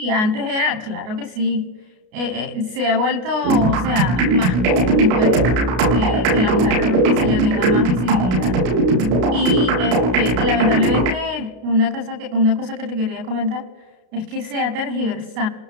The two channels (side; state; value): left; late; 33 ms